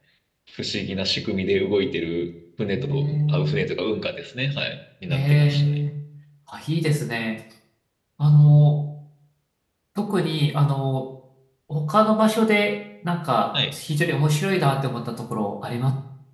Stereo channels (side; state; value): both; identical; correlation 1.00